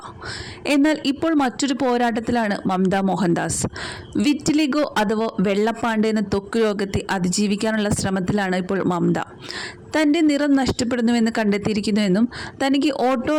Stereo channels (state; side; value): identical; both; correlation 1.00